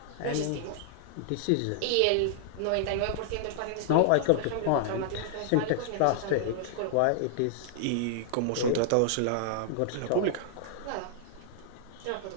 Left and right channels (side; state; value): both; different; correlation -0.01